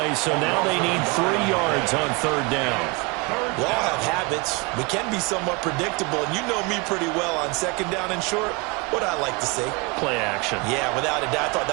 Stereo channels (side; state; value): left; quieter; 27.8 dB